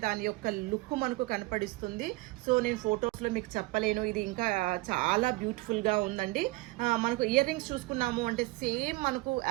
దాని యొక్క లుక్ మనకు కనపడిస్తుంది. సో నేను ఫొటోస్లో మీకు చెప్పలేను. ఇది ఇంకా చాలా బ్యూటిఫుల్గా ఉందండి. మనకు ఇయర్ రింగ్స్ చూసుకున్నాము అంటే సేమ్ మనకు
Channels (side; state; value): left; quieter; 22.4 dB